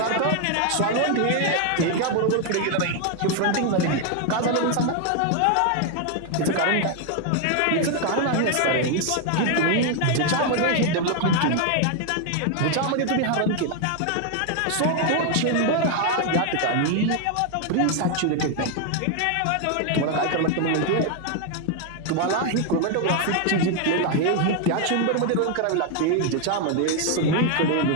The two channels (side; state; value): both; different; correlation 0.00